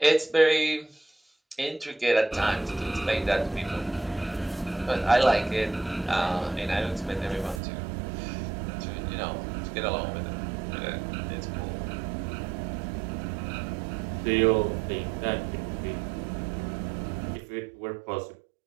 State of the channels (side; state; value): left; drops out; at 7.6 s